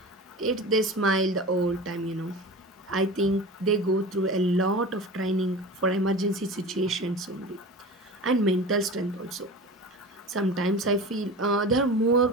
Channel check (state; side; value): normal; both; correlation 0.33